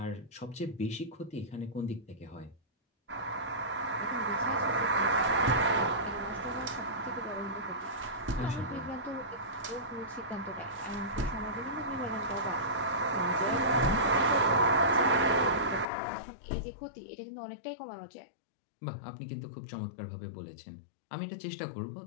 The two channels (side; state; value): right; drops out; at 15.9 s